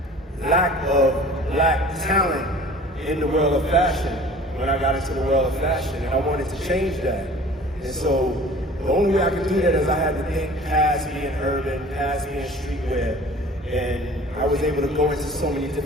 lack of black talent in the world of fashion when I got into the world of fashion, and I wanted to change that. And so the only way I could do that is I had to think past being urban, past being streetwear, and I was able to go into so many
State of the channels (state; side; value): normal; both; correlation 0.45